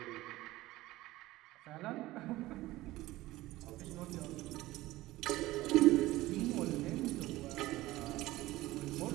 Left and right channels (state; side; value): quieter; left; 17.5 dB